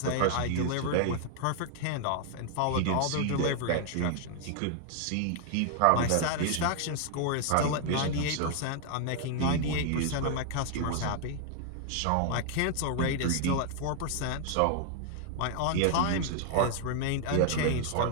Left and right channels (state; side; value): different; both; correlation 0.00